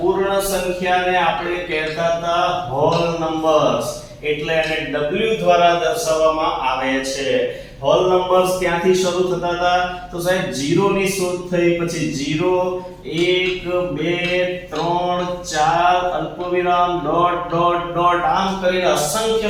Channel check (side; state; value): both; identical; correlation 1.00